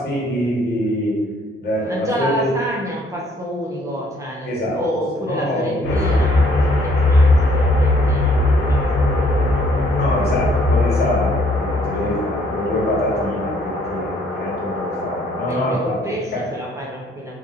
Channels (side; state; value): both; normal; correlation 0.64